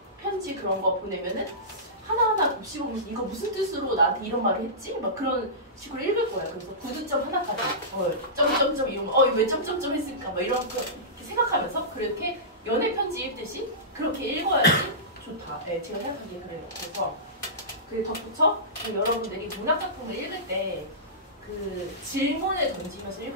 편지 그런 거 보내면은 하나하나 곱씹으면서 이거 무슨 뜻으로 나한테 이런 말을 했지? 막 그런 식으로 읽을 거예요. 그래서 구두점 하나까지 점점점 이러면 왜 점점점 했을까? 막 이런 거 이렇게 생각하면서 그렇게 연애 편지 읽듯이 그렇게 읽어야지 좋다. 네, 제가 생각하기에 그래요. 그래서 그 덧붙여 여러분들이 문학 작품을 읽을 때 그 질문을 던지면서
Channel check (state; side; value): normal; both; correlation -0.20